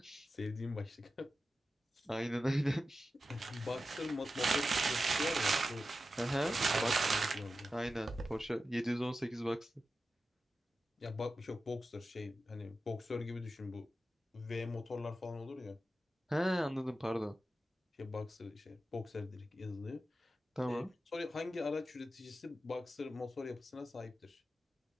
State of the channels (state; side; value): normal; both; correlation 0.92